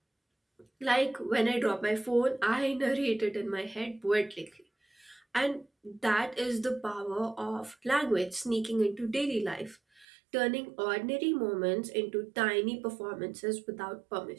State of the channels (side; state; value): left; drops out; at 10.1 s